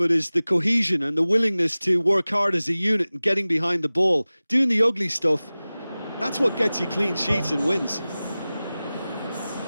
is the cohesion and the willingness to work hard as a unit and getting behind the ball. Doing the ugly stuff, that's what gets you clean sheets and wins.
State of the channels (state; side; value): inverted; both; correlation -0.97